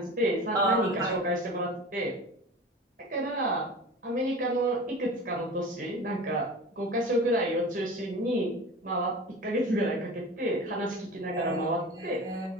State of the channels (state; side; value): normal; both; correlation 0.35